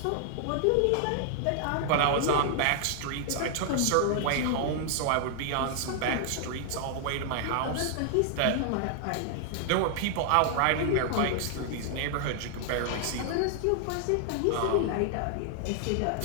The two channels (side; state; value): both; different; correlation -0.01